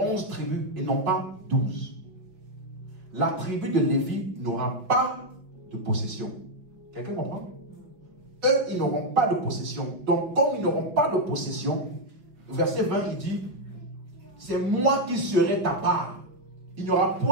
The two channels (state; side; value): late; left; 5.2 ms